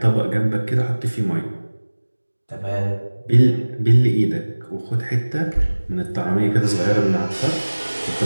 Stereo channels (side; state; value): both; inverted; correlation -1.00